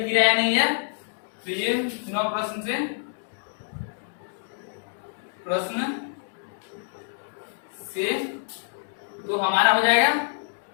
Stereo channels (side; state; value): right; silent; digital silence